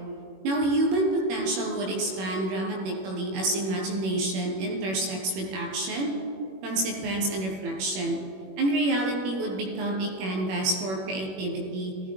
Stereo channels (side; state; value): left; late; 21 ms